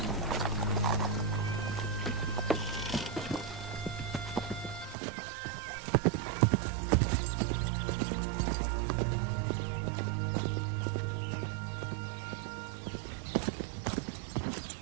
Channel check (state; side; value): drops out; left; at 5.0 s